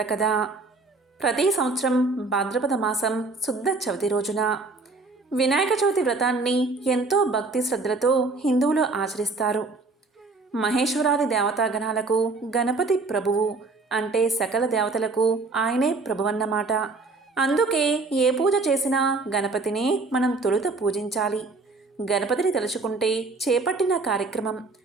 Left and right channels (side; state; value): left; quieter; 3.7 dB